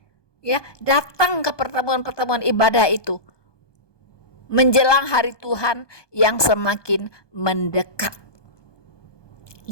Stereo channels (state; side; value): late; right; 1.2 ms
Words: ya, datang ke pertemuan-pertemuan ibadah itu menjelang hari Tuhan yang semakin mendekat.